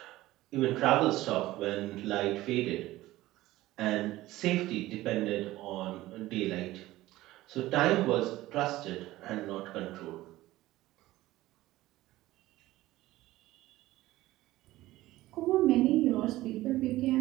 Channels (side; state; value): left; quieter; 16.8 dB